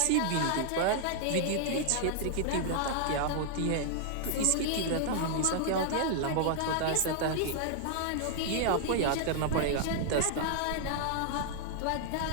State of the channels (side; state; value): both; different; correlation -0.01